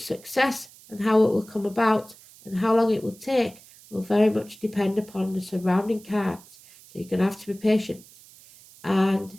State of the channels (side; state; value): right; noise; hiss, 23 dB below the sound